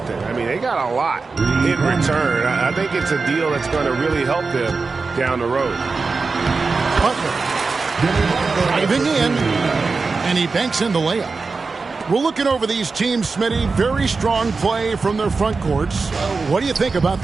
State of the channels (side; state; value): left; quieter; 4.3 dB